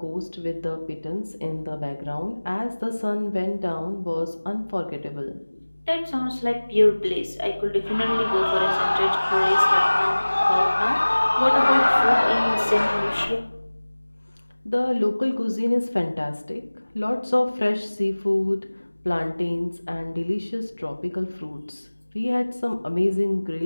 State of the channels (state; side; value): inverted; both; correlation -1.00